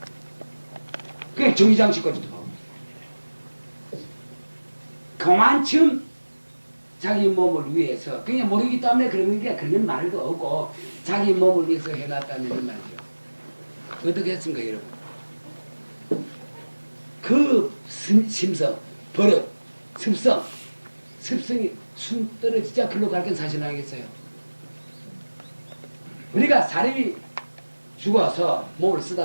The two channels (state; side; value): inverted; both; correlation -1.00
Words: 그게 정의장식까지도 하고 그만큼 자기 몸을 위해서 그냥 모르기 때문에 그런 말도 없고 자기 몸을 위해서 해놨다는 말이죠. 어떻게 했습니까 여러분? 그 심성, 버릇, 습성이 숨 떨어지자 글로 갈 건 사실 아니겠어요? 우리가 사람이 죽어서 몸을